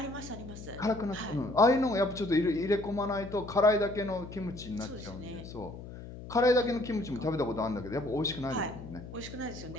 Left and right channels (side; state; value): left; noise; hum, 12 dB below the sound